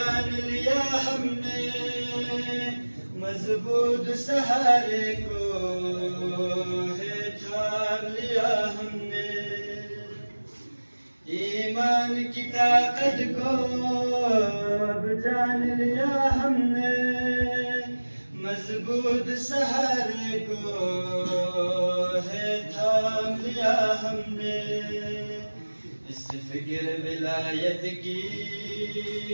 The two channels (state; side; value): inverted; both; correlation -1.00